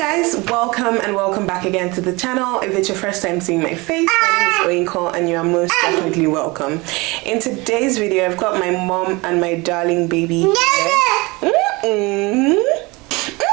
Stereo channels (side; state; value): left; quieter; 24.5 dB